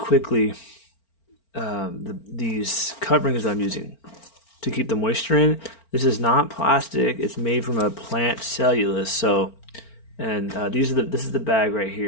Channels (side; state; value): right; late; 4.4 ms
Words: these coverings I'm using to keep the moisture in. This is not plastic; it's made from a plant cellulose. This is the bag right